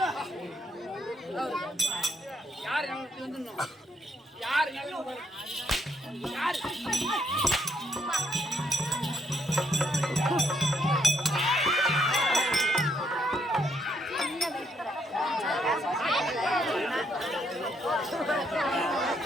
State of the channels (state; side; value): normal; both; correlation 0.74